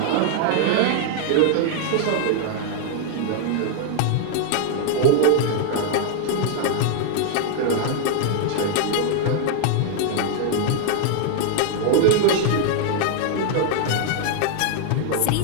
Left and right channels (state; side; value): different; both; correlation 0.00